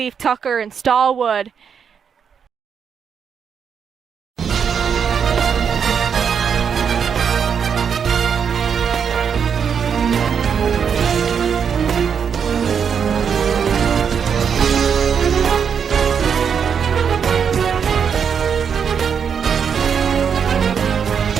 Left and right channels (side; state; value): left; quieter; 7.1 dB